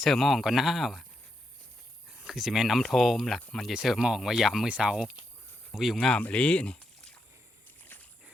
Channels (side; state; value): both; normal; correlation 0.82